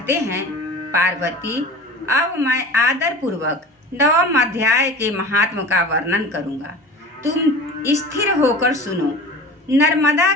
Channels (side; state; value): both; normal; correlation 0.37